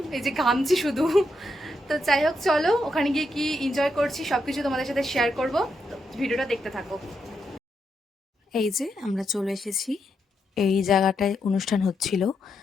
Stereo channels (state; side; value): normal; both; correlation 0.82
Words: এই যে ঘামছি শুধু। তো যাই হোক, চলো ওখানে গিয়ে কি এনজয় করছি সব কিছু তোমাদের সাথে শেয়ার করব। তো ভিডিওটা দেখতে থাকো। এই যে আমরা চলে এসেছি, এই জায়গাটায় অনুষ্ঠান হচ্ছিল।